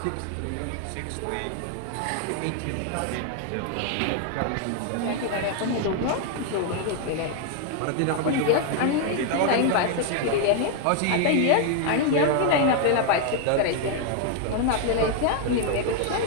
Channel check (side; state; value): both; different; correlation 0.00